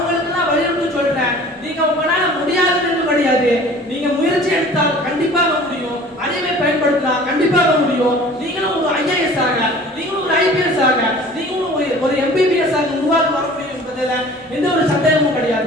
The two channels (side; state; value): both; normal; correlation 0.46